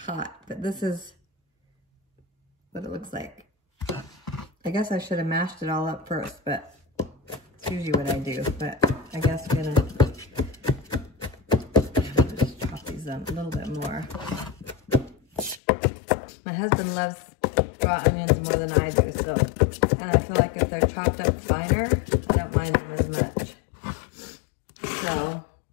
hot. But this is what it looks like. I guess I should have mashed it all up first, but it's usually what I do. But I guess I'm gonna just chop these up a little bit more. My husband loves raw onions more than I do, so, and I feel like if they're chopped up finer, I don't mind them as much. So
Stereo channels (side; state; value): right; drops out; at 15.6 s